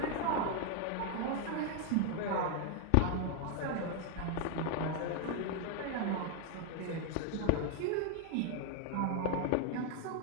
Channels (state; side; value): different; both; correlation 0.00